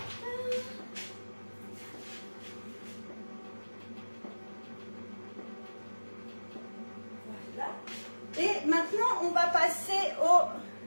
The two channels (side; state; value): both; inverted; correlation -1.00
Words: Voilà. Et maintenant, on va passer au...